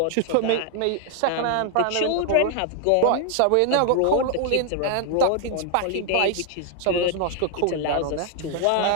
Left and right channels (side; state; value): both; different; correlation 0.00